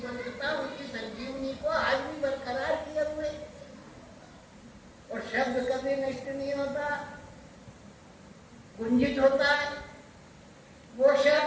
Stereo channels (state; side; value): identical; both; correlation 1.00